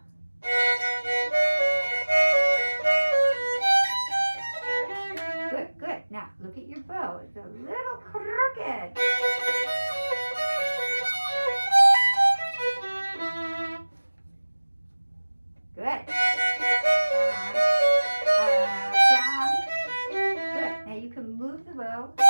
Look at your bow. It's a little crooked. Good. Down. Good. Now you can move the bow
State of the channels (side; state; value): both; inverted; correlation -1.00